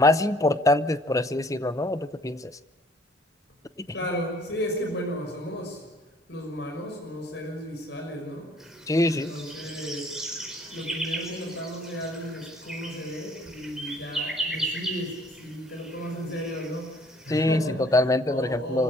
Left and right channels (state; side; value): normal; both; correlation 0.57